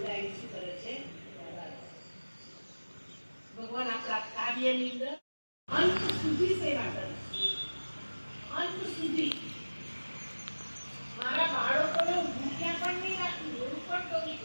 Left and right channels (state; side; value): inverted; both; correlation -1.00